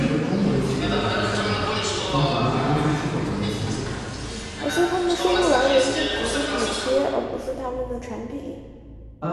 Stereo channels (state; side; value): identical; both; correlation 1.00